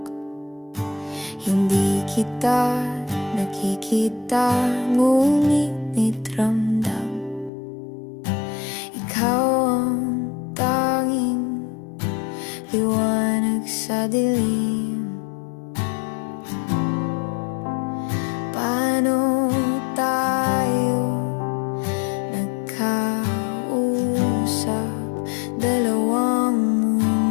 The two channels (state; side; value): drops out; right; at 7.5 s